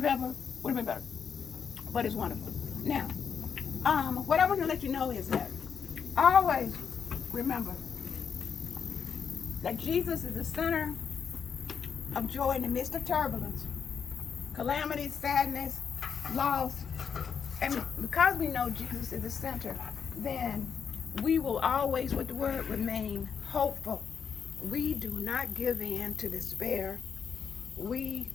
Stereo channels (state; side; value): quieter; right; 6.8 dB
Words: pepper would have been better. But it's wonderful. Now, what I want to let you know is that always remember that Jesus is the center of joy in the midst of turbulence, calamity, sadness, loss. And because we know Jesus is the center, then we will always, with the word, remain hopeful. We do not give in to despair. We